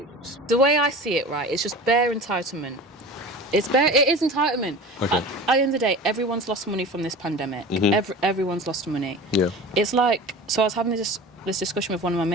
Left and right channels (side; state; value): both; normal; correlation 0.35